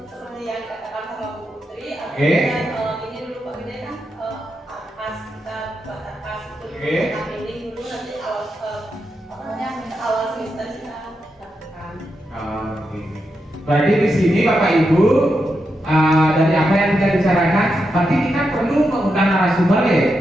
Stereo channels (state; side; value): normal; both; correlation 0.85